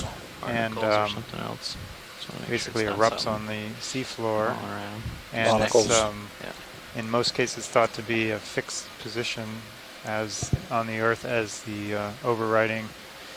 and basically erupts on the seafloor, and it's in most cases thought to be a fixed position as on the Earth as the overriding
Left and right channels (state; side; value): identical; both; correlation 1.00